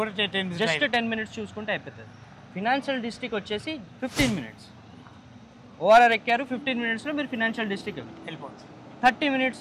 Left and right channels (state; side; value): identical; both; correlation 1.00